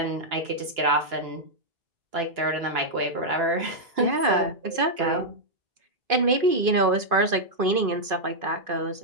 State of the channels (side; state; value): left; late; 2.5 ms